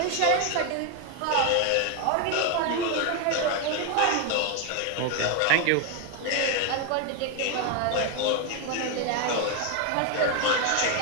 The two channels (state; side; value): different; both; correlation 0.01